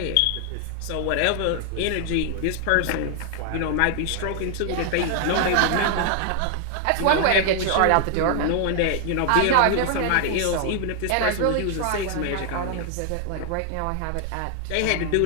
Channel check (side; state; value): both; different; correlation 0.00